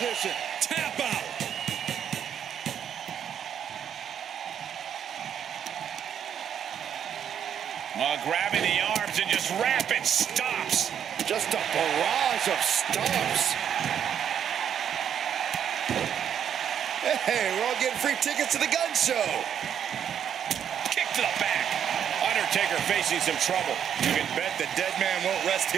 Tap out. Grabbing the arms and just rapid stops. Just a barrage of stomps. Hey, we're all getting free tickets to the gun show. Kick to the back. Undertaker facing some trouble. You can bet the Deadman won't rest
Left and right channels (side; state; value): left; quieter; 8.8 dB